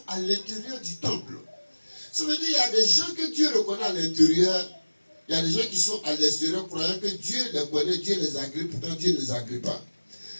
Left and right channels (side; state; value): both; inverted; correlation -1.00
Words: à l'intérieur du temple. Ça veut dire qu'il y a des gens que Dieu reconnaît à l'intérieur. Il y a des gens qui sont à l'extérieur croyant que Dieu les connaît, Dieu les agrée, pourtant Dieu ne les agrée pas.